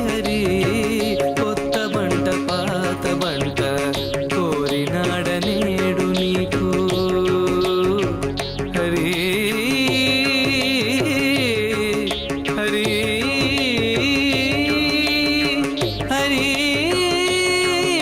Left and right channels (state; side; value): identical; both; correlation 1.00